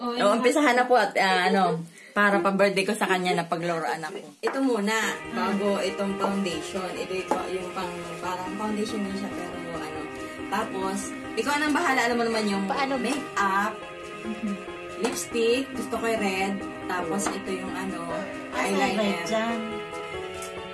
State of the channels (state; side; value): identical; both; correlation 1.00